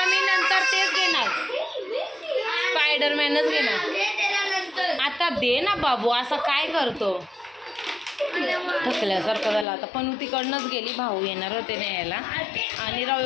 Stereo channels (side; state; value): right; drops out; at 9.7 s